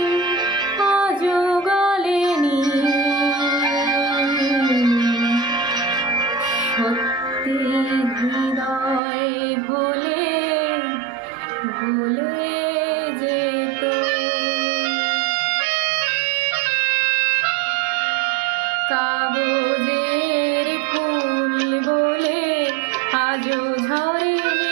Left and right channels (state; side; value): drops out; left; at 9.0 s